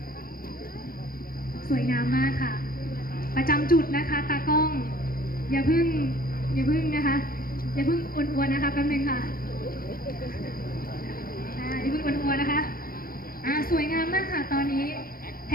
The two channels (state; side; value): late; right; 0.42 ms